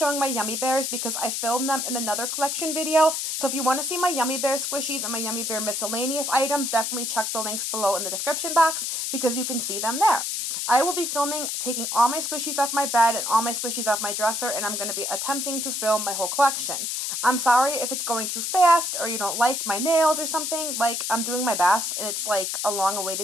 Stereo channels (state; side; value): noise; left; hiss, 2 dB below the sound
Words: my YUNMIIBEARs because I filmed them in another collection video, so if you want to see my YUNMIIBEAR squishies and my YUNMIIBEAR miscellaneous items, definitely check the links below in the description box because you can see them there. I will be filming taking all my squishies off my bed and all my squishies off my dresser, and I'm going to be attempting to film my whole collection. I'm sorry if it's going too fast or you don't like my nails or something. Like, I'm doing my best and it's like a